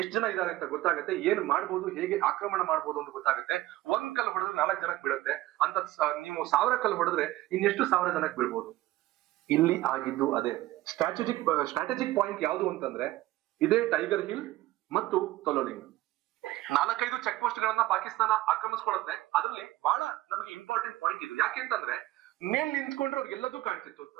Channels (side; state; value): left; quieter; 16.7 dB